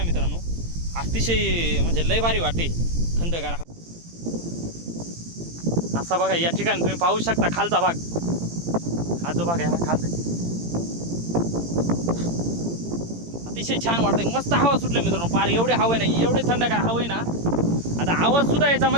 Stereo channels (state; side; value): late; left; 18 ms